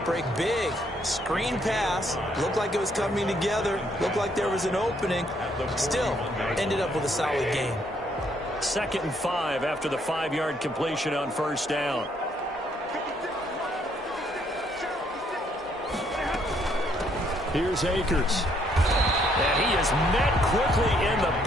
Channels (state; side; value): normal; both; correlation 0.70